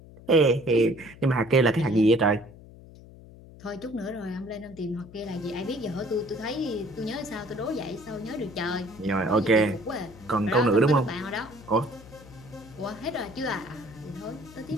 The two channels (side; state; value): left; noise; hum, 19 dB below the sound